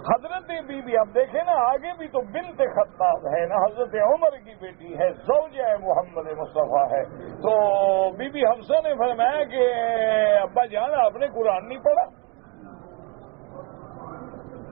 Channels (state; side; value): quieter; left; 29.1 dB